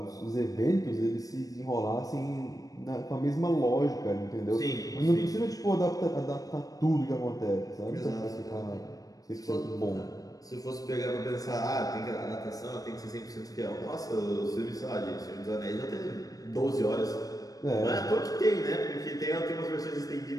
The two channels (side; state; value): right; late; 0.18 ms